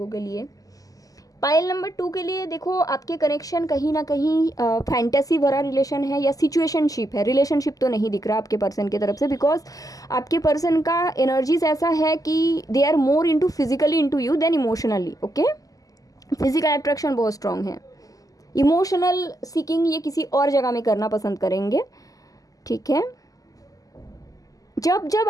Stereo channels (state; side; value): late; right; 0.17 ms